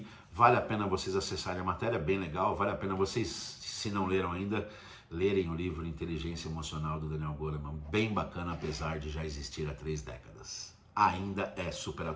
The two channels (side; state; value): both; identical; correlation 1.00